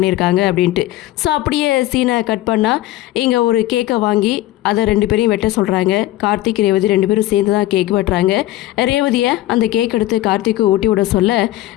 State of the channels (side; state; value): right; quieter; 15.7 dB